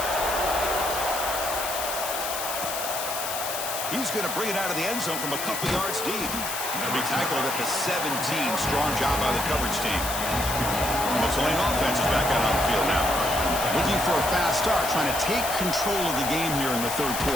He's going to bring it out of the end zone from a couple yards deep. He'll be tackled at the 17. Strong job by the coverage team. The Tulane offense is back out on the field now. Looking for a fast start, trying to take control of the game here in the 3rd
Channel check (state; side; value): noise; left; hiss, 4 dB below the sound